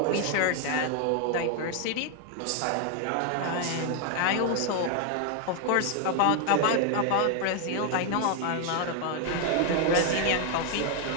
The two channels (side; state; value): both; different; correlation 0.01